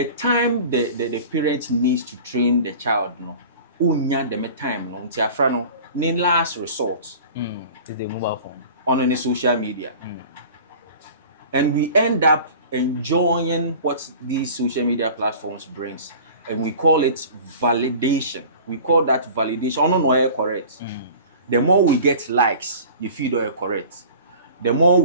time the parents needs to train the child, unya them time until afrano last resort is the mobile phone on any social media. And we end up enjoying what these social media platforms brings, and we call it validation. We call that validation. Oh no, correct. The more we get likes, you feel you're correct. The more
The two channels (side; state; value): both; inverted; correlation -0.41